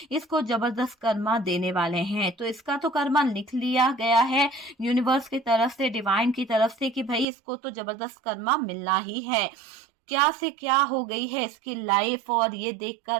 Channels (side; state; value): left; drops out; at 7.2 s